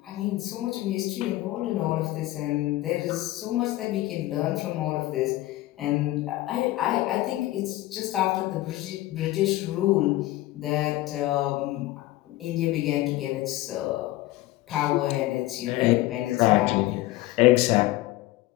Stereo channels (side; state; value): right; quieter; 17.1 dB